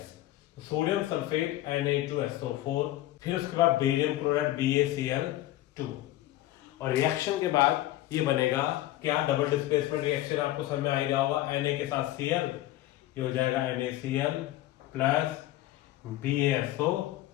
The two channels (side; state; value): right; quieter; 15.2 dB